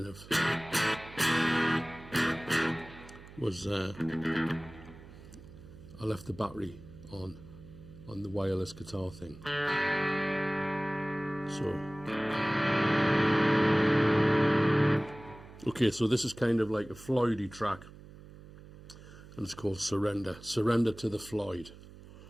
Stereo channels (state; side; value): noise; right; hum, 18 dB below the sound